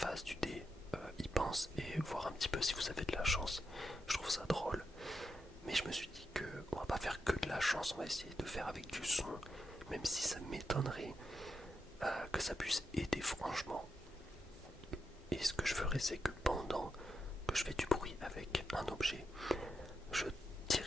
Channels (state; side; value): normal; both; correlation 0.85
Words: du dé il pense et voir un petit peu si vous avez de la chance. Je trouve ça drôle, mais je me suis dit que on va pas faire que de la chance, on va essayer de faire avec du son, même si ça m'étonnerait que ça puisse aider franchement. Et ce que je ferai, c'est que pendant que je fais du bruit avec un objet, je